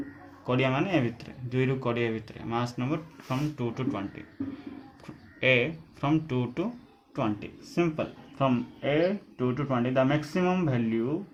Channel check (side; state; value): both; identical; correlation 1.00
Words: कोडिया माने ए भितर 2 रु कोडिया भितर mass number from 2 to 20 a from 2 to 20 simple from a 2 to 20 the maximum value